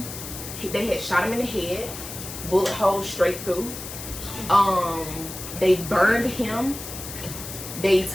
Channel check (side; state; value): left; noise; hiss, 10 dB below the sound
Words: They had shot him in the head. Bullet holes straight through. They burned him. They